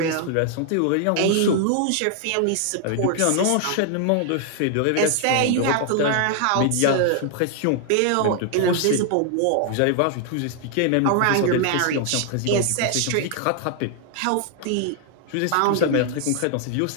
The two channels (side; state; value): both; different; correlation 0.00